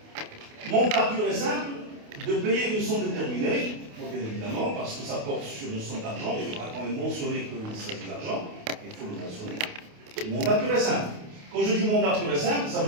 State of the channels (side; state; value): left; late; 28 ms